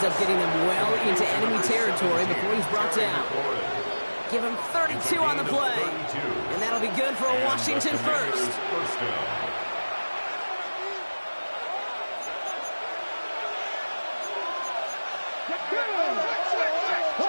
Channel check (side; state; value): both; inverted; correlation -1.00